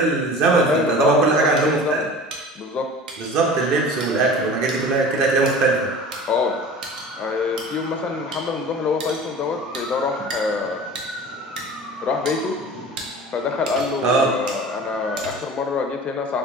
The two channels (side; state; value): both; normal; correlation 0.39